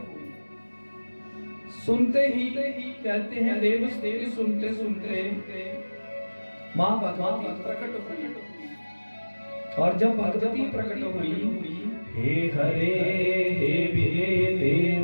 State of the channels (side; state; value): both; inverted; correlation -1.00